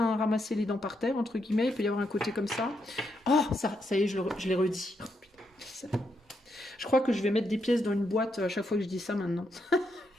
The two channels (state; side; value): normal; both; correlation 0.80